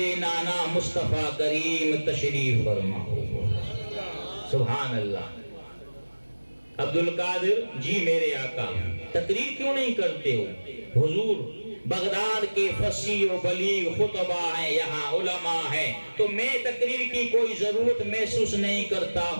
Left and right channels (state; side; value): inverted; both; correlation -1.00